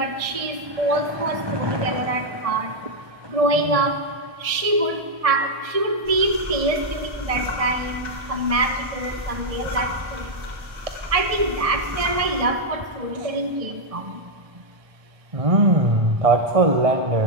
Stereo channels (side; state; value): left; late; 1.6 ms